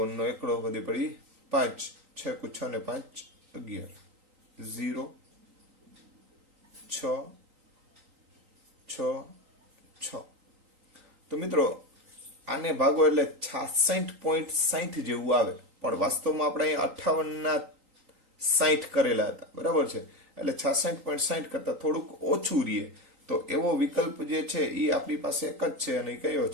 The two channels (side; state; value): left; late; 3.9 ms